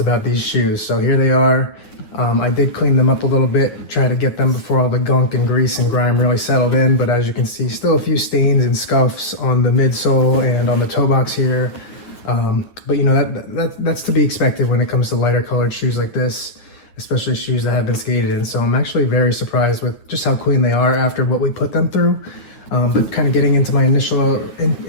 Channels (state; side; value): late; right; 9.7 ms